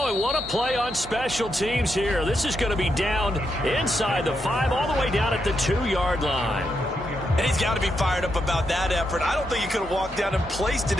and what a play on special teams here. This is going to be down inside the 5, all the way down at the 2-yard line. And he's got to be fired up about that effort. I don't think he could have walked down and placed it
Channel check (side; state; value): both; normal; correlation 0.82